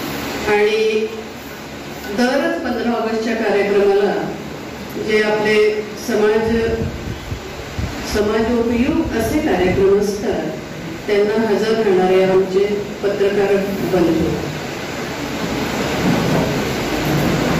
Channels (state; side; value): identical; both; correlation 1.00